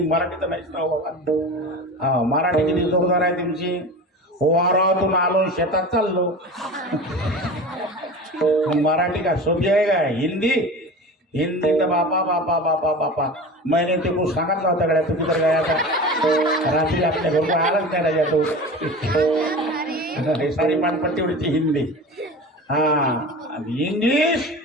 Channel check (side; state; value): both; normal; correlation 0.33